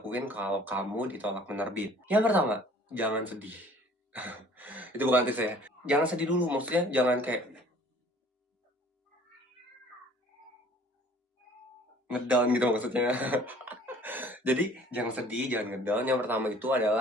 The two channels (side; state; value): both; normal; correlation 0.52